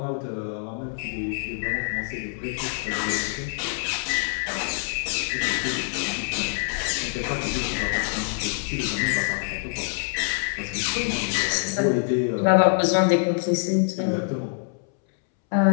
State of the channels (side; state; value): right; silent; 62 dB below the other